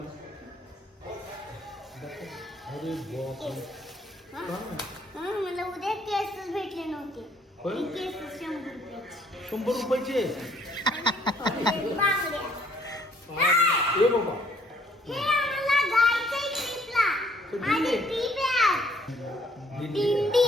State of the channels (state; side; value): normal; both; correlation 0.63